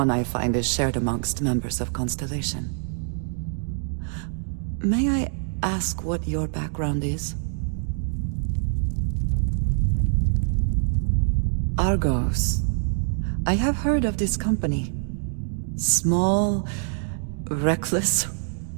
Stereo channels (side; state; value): left; silent; 62 dB below the other